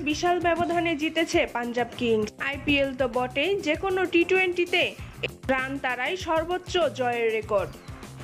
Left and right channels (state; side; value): identical; both; correlation 1.00